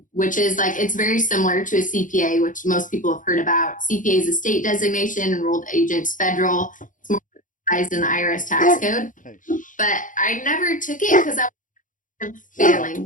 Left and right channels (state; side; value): late; right; 0.38 ms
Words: which is like, it's very similar to a CPA, which most people have heard about. CPA is a state designation, enrolled agent's federal. It's more recognized in the IRS tax code. But I never took it because I was failing,